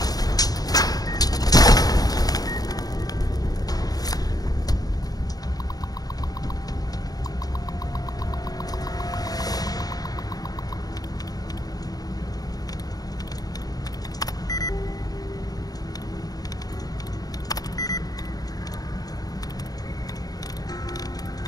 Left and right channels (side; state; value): right; late; 0.18 ms